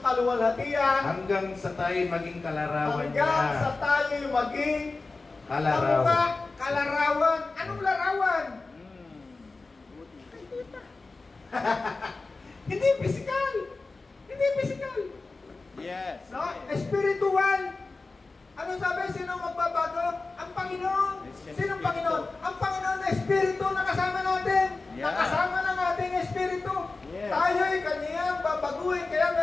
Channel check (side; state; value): right; quieter; 3.7 dB